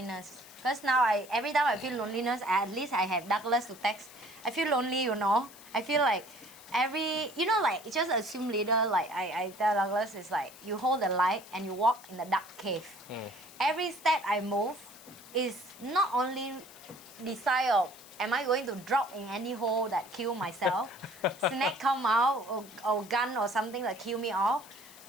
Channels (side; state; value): left; noise; hiss, 20 dB below the sound